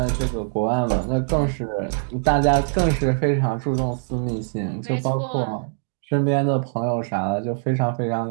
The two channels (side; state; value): left; silent; digital silence